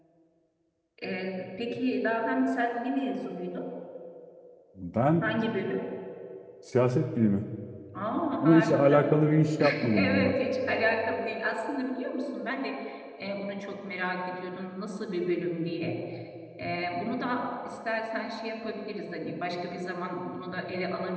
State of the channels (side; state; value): both; identical; correlation 1.00